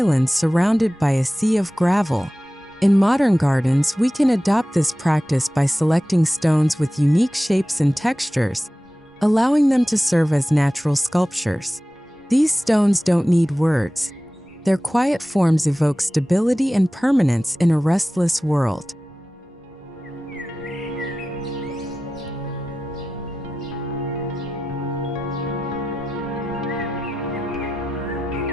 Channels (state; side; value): normal; both; correlation 0.94